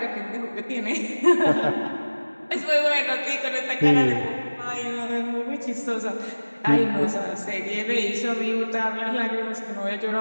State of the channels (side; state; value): both; inverted; correlation -1.00